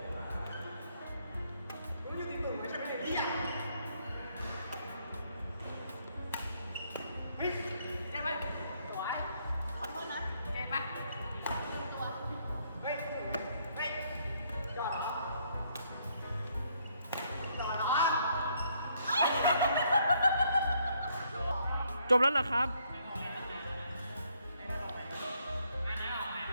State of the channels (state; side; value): inverted; both; correlation -0.70